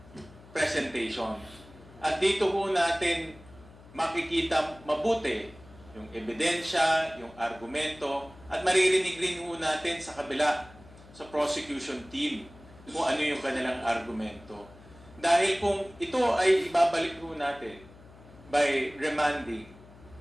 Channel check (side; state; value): left; noise; hum, 22 dB below the sound